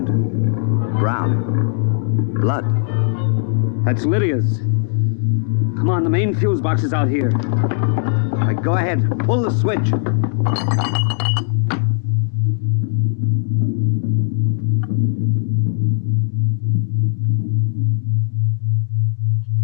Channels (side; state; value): right; silent; digital silence